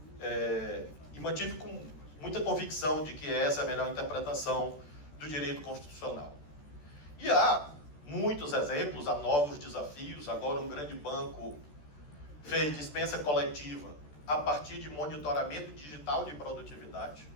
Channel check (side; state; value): right; late; 14 ms